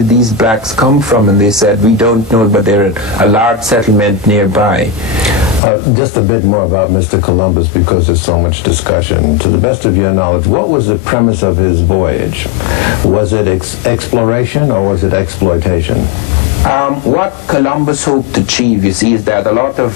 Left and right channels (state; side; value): drops out; right; at 5.6 s